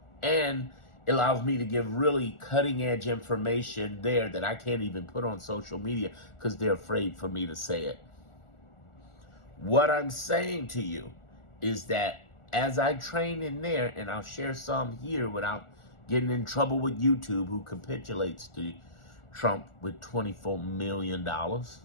and it allows me to give really cutting edge information there that I can't even put on social media because they're afraid for me to say it. What I'm saying to you is that as I train in there, and I'll share some here without getting in trouble with YouTube, who capitulates to Trump with $24 million,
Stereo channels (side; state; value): right; late; 1.4 ms